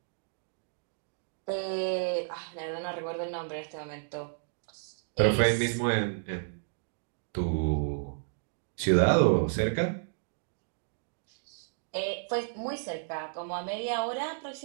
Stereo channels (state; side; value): silent; left; digital silence